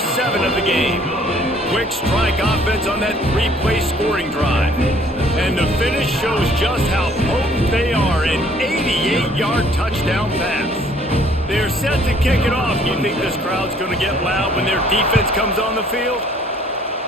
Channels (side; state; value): both; normal; correlation 0.59